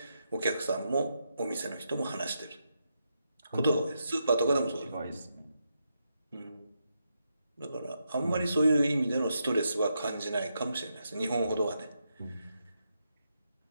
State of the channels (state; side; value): inverted; both; correlation -0.83